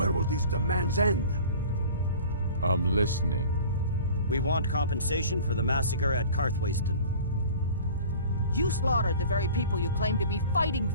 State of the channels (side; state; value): both; inverted; correlation -0.43